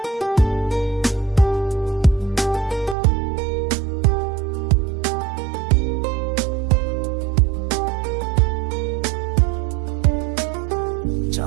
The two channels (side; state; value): left; drops out; at 3.0 s